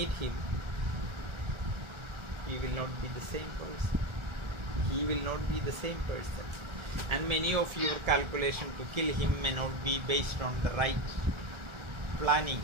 him, he will not be the same person. He will not be the same person. And many of your calculation to kill him may not be based on the right planning,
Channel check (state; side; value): late; left; 1.4 ms